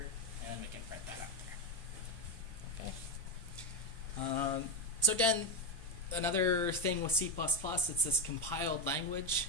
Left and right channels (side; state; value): right; noise; hum, 20 dB below the sound